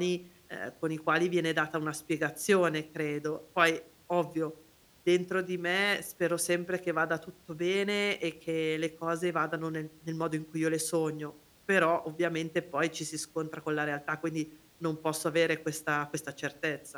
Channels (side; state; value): both; identical; correlation 1.00